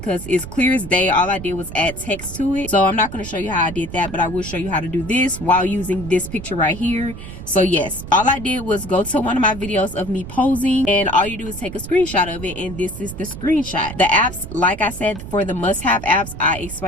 it's clear as day. All I did was add text to it. So I'm not going to show you how I did that, but I will show you how to do this while using this picture right here. So yes, all I did was go to one of my videos of me posing, and all you do is take a screenshot of it, and this is the screenshot. The apps, like I said, for the must-have apps, I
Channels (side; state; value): right; noise; rumble, 11 dB below the sound